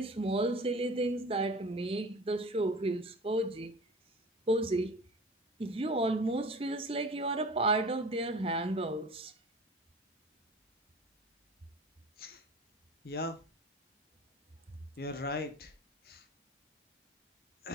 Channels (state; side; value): normal; both; correlation 0.40